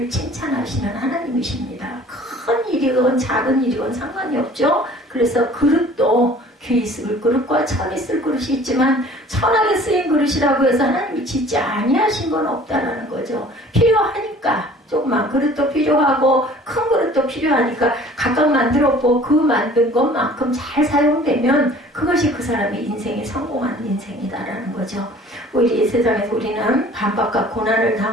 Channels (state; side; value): normal; both; correlation 0.49